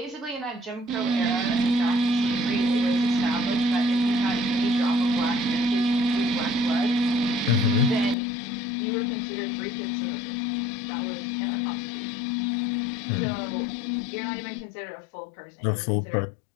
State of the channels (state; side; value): drops out; right; at 8.2 s